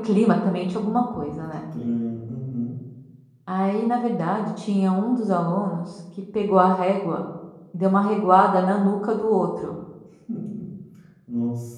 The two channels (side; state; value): both; identical; correlation 1.00